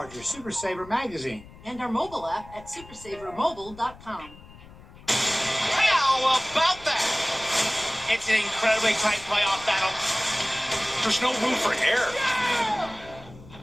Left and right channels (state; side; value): noise; left; rumble, 20 dB below the sound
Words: Super Saver magazine And our mobile app at supersavermobile.com. How about that? It's an incredibly tight playoff battle. There's no room for error.